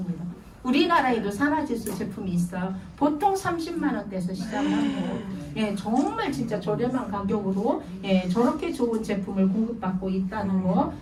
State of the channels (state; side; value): identical; both; correlation 1.00